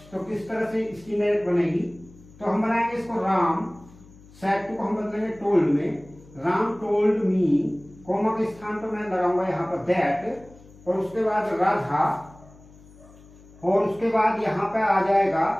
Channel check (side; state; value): left; noise; hum, 23 dB below the sound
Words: तो किस तरह से इसकी इनडायरेक्ट बनेगी? तो हम बनाएंगे इसको, राम सेड टू को हम बदलेंगे टोल्ड में, राम टोल्ड मी, कॉमा के स्थान पर मैं लगाऊंगा यहाँ पर दैट, और उसके बाद राधा, और उसके बाद यहाँ पे आ जाएगा